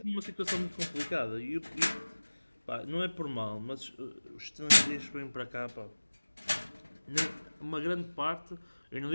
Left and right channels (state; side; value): inverted; both; correlation -1.00